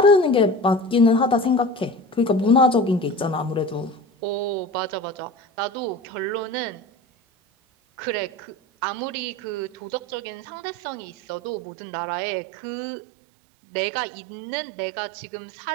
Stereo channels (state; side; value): drops out; left; at 11.6 s